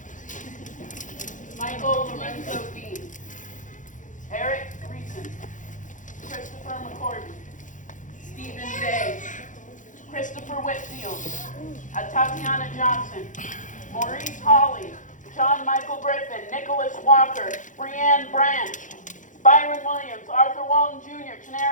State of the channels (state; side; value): late; right; 0.37 ms